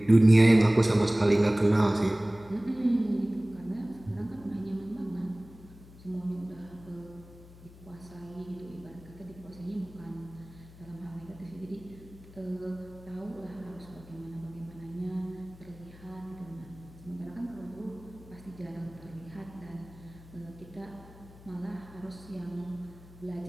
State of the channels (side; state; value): left; noise; hum, 20 dB below the sound